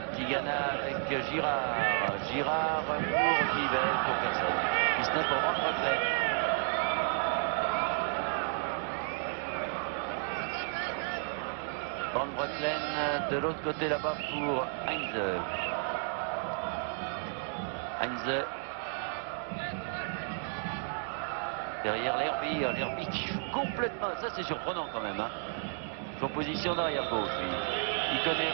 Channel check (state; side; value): silent; left; 56 dB below the other